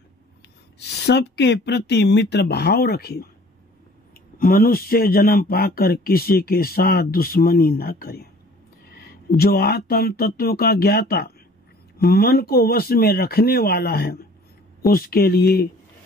सबके प्रति मित्र भाव रखे, मनुष्य जन्म पाकर किसी के साथ दुश्मनी न करे। जो आत्म तत्व का ज्ञाता, मन को वश में रखने वाला है, उसके लिए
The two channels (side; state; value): both; normal; correlation 0.51